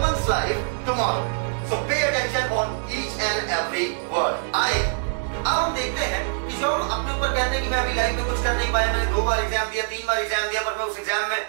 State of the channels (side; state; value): left; silent; digital silence